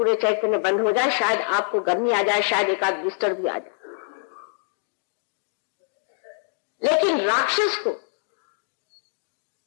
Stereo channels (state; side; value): silent; right; digital silence